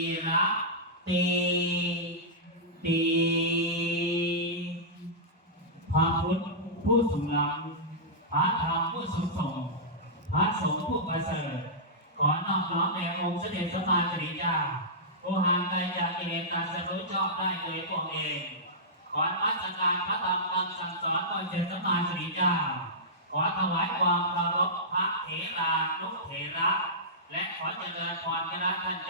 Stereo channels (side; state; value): both; normal; correlation -0.15